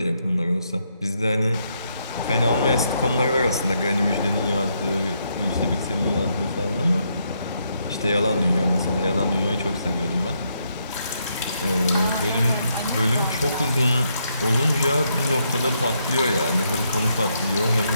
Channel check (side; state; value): both; inverted; correlation -0.77